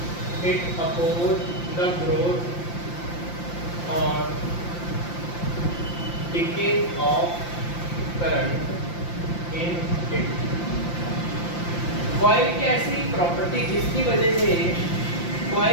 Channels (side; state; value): right; late; 5.8 ms